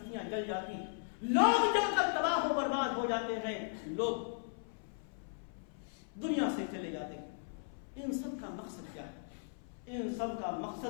جل جاتی، لوگ جل کر تباہ و برباد ہو جاتے ہیں، لوگ دنیا سے چلے جاتے ہیں. ان سب کا مقصد کیا ہے؟ ان سب کا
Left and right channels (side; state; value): right; silent; 53 dB below the other